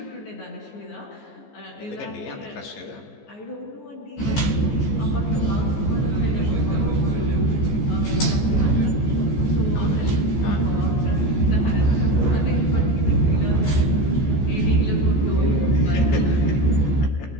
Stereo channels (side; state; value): right; late; 15 ms